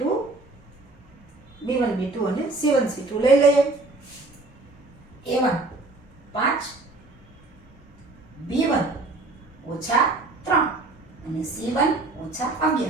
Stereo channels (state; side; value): quieter; left; 3.1 dB